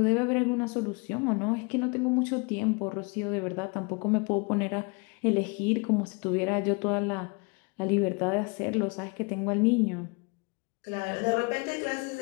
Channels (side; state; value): right; quieter; 31.1 dB